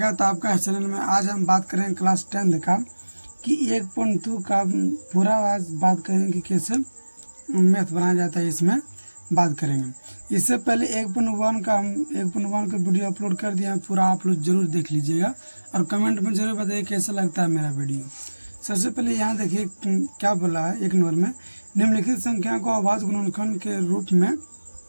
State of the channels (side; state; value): both; inverted; correlation -1.00